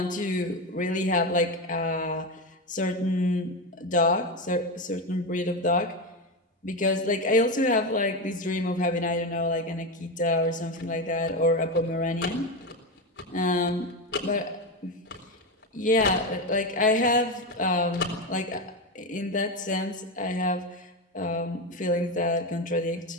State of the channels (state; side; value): normal; both; correlation 0.15